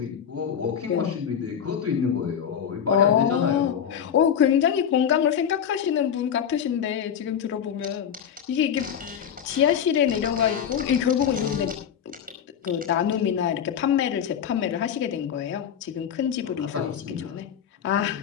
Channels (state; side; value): quieter; right; 8.4 dB